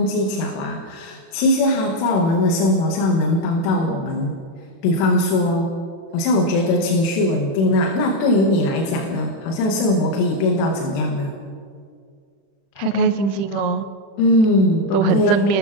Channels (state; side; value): late; right; 36 ms